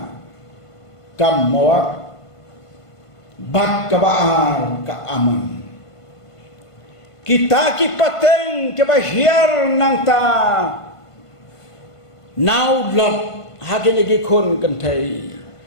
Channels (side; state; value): right; late; 1.5 ms